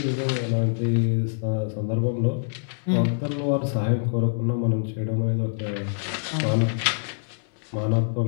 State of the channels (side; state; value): right; silent; digital silence